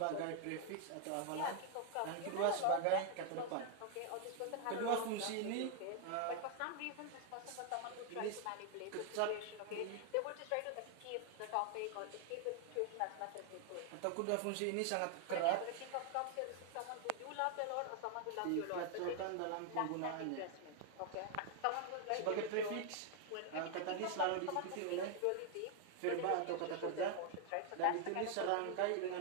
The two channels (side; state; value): both; different; correlation 0.00